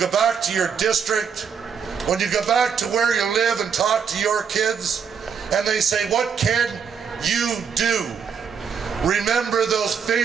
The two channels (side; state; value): left; quieter; 6.7 dB